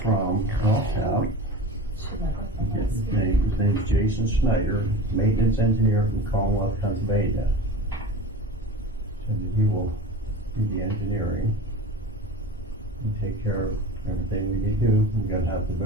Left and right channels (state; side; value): normal; both; correlation 0.34